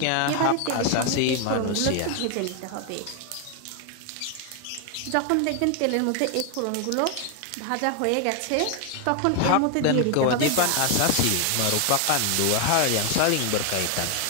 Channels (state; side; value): different; both; correlation 0.01